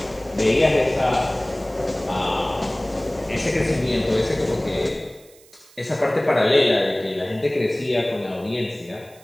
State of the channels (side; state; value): right; noise; hiss, 26 dB below the sound